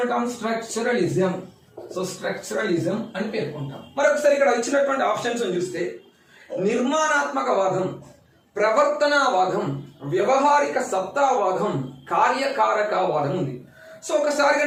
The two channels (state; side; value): identical; both; correlation 1.00